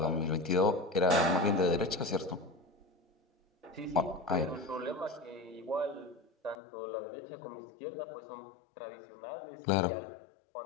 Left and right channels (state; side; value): drops out; right; at 6.6 s